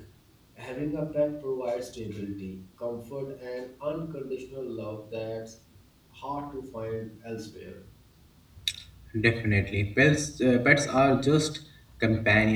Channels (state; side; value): identical; both; correlation 1.00